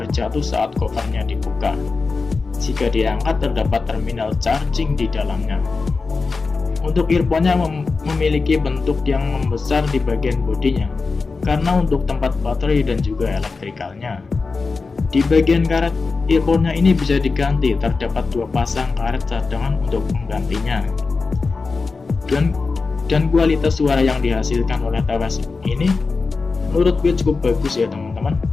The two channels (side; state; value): right; quieter; 4.2 dB